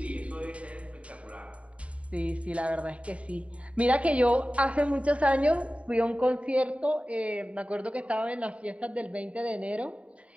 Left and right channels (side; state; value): left; late; 0.065 ms